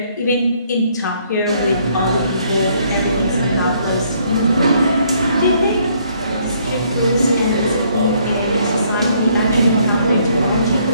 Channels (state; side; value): inverted; both; correlation -0.67